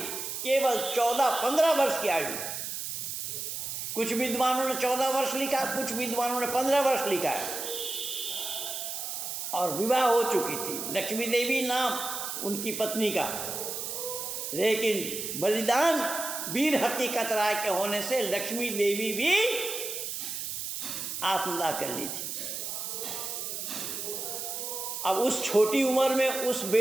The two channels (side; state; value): right; noise; hiss, 5 dB below the sound